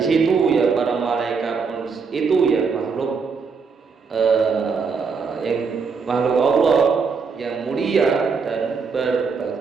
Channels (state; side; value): quieter; left; 5.2 dB